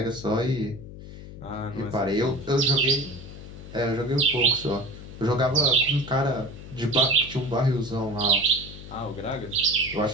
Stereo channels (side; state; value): left; noise; hum, 14 dB below the sound